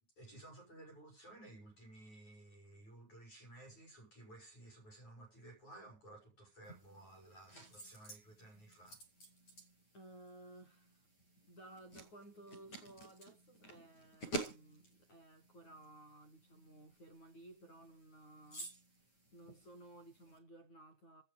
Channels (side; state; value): right; late; 9.4 ms